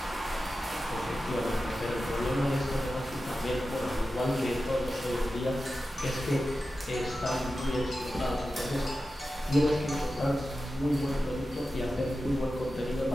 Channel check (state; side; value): normal; both; correlation 0.93